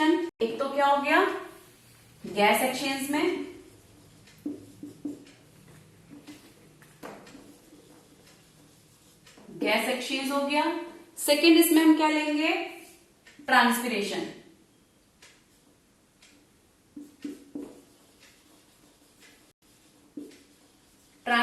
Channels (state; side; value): identical; both; correlation 1.00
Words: एक तो क्या हो गया, गैस एक्सचेंज में, गैस एक्सचेंज हो गया। सेकेंड इसमें हम क्या लेंगे, ट्रांसपिरेशन।